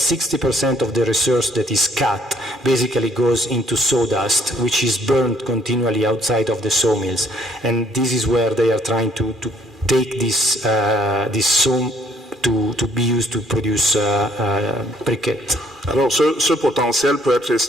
of the resource that is cut basically goes into sawdust, which is burned continually outside of the sawmills. And this is where they are trying to take this saw to be used to produce briquettes. Alors, ce potentiel peut être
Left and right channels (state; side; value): normal; both; correlation 0.64